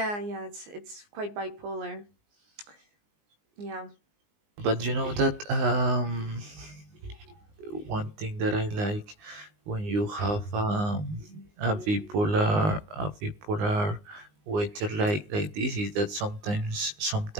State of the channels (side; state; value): left; late; 19 ms